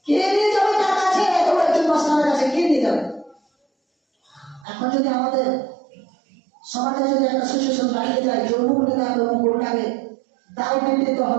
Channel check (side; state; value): left; drops out; at 4.7 s